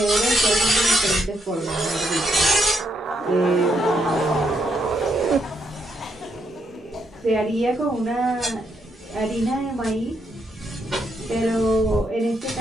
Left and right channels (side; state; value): both; normal; correlation 0.77